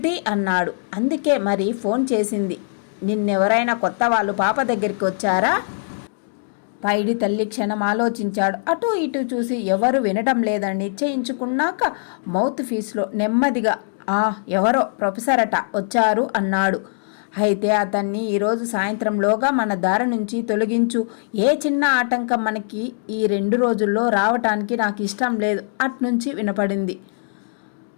అన్నాడు. అందుకే మరి ఫోన్ చేసింది. నిన్నెవరైనా కొత్త వాళ్ళు పాప దగ్గరికి వచ్చారా? పైడి తల్లి క్షణం ఆలోచించాడు. అటూ ఇటూ చూసి ఎవరు వినడం లేదని నిశ్చయించుకున్నాక మౌత్ ఫీస్లో నెమ్మదిగా ఎవరో ప్రొఫెసర్ అట వచ్చారు అన్నాడు. అయితే అతన్ని ఈరోజు సాయంత్రంలోగా మన దారి నుంచి తొలగించు. ఏ చిన్న ఆటంకం మనకి ఈ 2 రోజుల్లో రావటానికి నాకు ఇష్టం లేదు అట్నుంచి వినపడింది.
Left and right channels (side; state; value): right; silent; digital silence